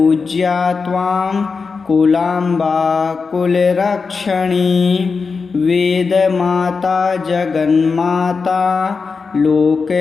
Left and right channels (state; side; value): quieter; right; 4.8 dB